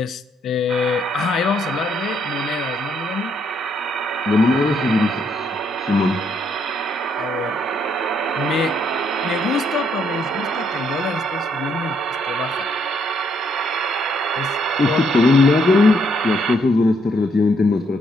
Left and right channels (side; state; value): both; normal; correlation 0.72